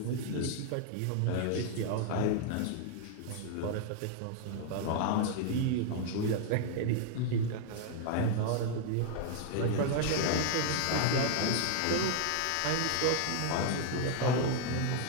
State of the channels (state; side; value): different; both; correlation 0.00